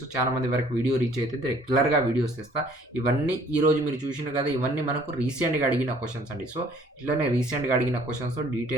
చాలా మంది వరకు వీడియో రీచ్ అయితే రెగ్యులర్గా వీడియోస్ తెస్తా. ఇవన్నీ ఈరోజు మీరు చూసిన కదా, ఇవన్నీ మనకు రీసెంట్గా అడిగిన క్వశ్చన్స్ అండి. సో ఇట్లానే రీసెంట్గా అడిగిన క్వశ్చన్స్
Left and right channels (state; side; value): normal; both; correlation 0.57